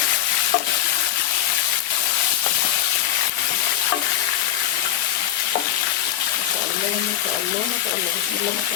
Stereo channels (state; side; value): quieter; right; 11.8 dB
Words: ما شاء الله ما شاء الله ما شاء الله بسم الله ما